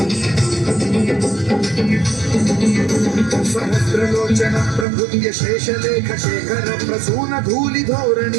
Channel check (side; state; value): left; drops out; at 4.9 s